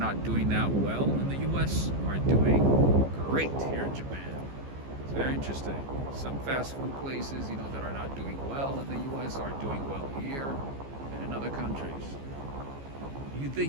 doing that well in the U.S. are doing great here in Japan. It's very interesting. Some fast food places, that are not doing well in the U.S. are doing well here and in other countries. You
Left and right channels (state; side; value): late; left; 15 ms